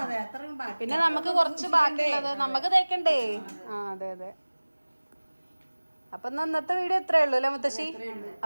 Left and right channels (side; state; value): both; inverted; correlation -1.00